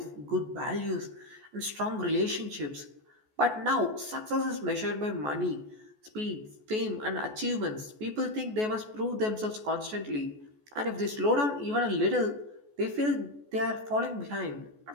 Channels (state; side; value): late; left; 14 ms